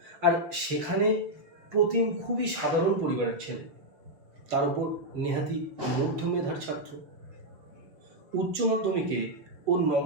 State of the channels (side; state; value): left; late; 6.4 ms